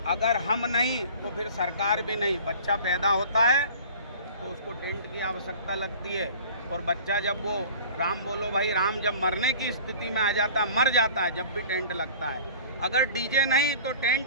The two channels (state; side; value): inverted; both; correlation -0.44